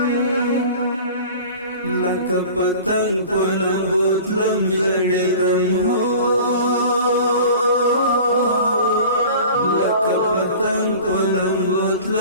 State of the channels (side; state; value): both; inverted; correlation -0.41